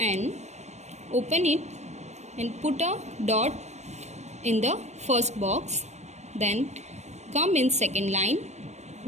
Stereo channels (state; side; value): late; left; 0.33 ms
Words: open it and put a dot in the first box. Then come in second line,